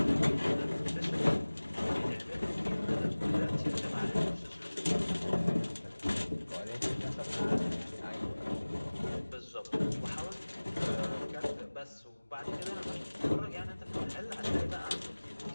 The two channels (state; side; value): inverted; both; correlation -1.00